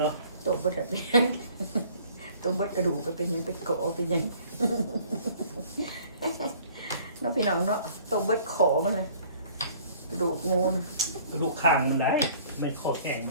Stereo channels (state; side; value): inverted; both; correlation -0.54